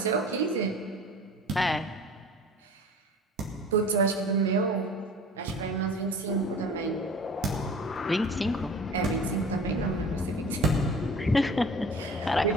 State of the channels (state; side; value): normal; both; correlation 0.42